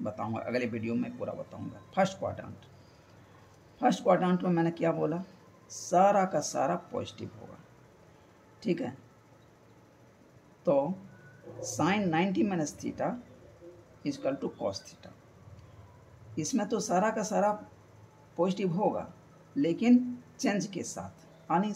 बताऊँगा, अगले वीडियो में पूरा बताऊँगा। फर्स्ट क्वाड्रेंट में मैंने क्या बोला, सारा का सारा पॉजिटिव होगा, ठीक है। तो sine 90 minus theta equal to cos theta, इसमें तो सारा का सारा पॉजिटिव होगा, लेकिन चेंज के साथ, यानी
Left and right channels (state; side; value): identical; both; correlation 1.00